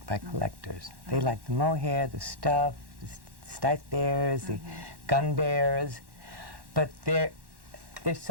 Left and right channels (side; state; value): left; late; 1.1 ms